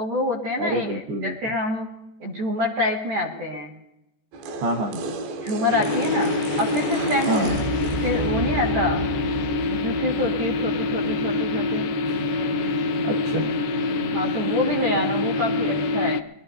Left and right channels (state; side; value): late; left; 14 ms